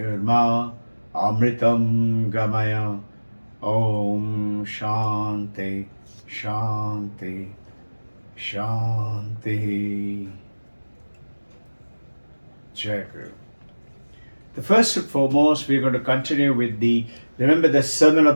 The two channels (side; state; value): both; inverted; correlation -1.00